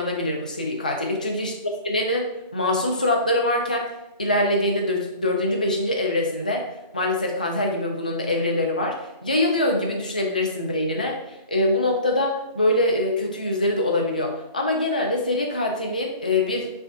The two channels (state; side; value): inverted; both; correlation -0.42